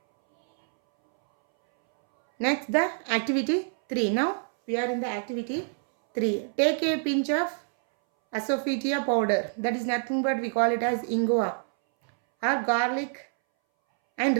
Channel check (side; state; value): left; silent; 61 dB below the other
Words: Next the activity 3. Now we are in the activity 3. Take a pinch of asafoetida powder, that is nothing but we call it as ingua or garlic, and